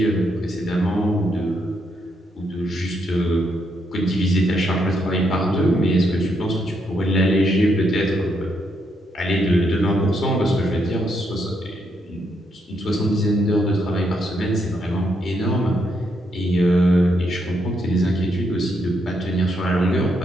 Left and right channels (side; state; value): both; normal; correlation 0.77